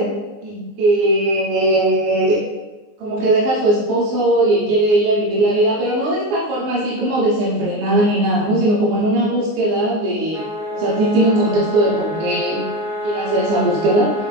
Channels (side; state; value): left; late; 19 ms